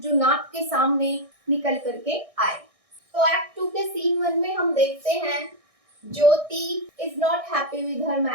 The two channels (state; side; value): late; left; 1.6 ms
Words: जो नाथ के सामने निकल करके आए। तो एक्ट 2 के सीन 1 में हम देखते हैं Jyoti is not happy with her